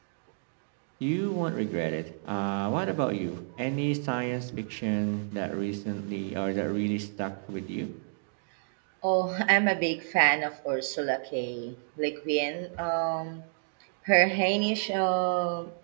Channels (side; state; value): left; silent; digital silence